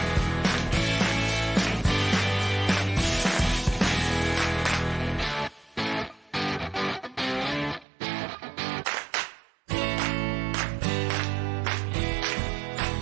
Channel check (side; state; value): left; drops out; at 7.9 s